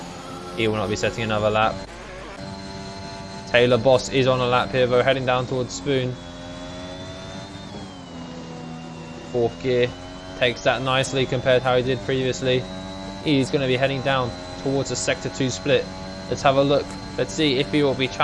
He will not be setting another lap. Taylor Boss is on a lap here though, heading down towards Spoon. Fourth gear, takes that nicely compared to how he did previously. He's going to be heading down towards the sector 2 split. Let's have a look. Let's see if he will be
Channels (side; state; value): both; identical; correlation 1.00